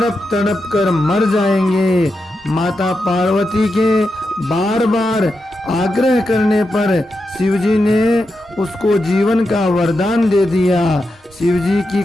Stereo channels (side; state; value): both; normal; correlation 0.88